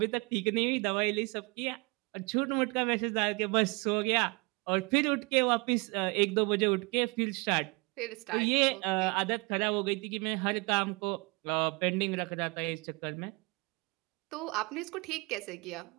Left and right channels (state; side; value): quieter; left; 28.6 dB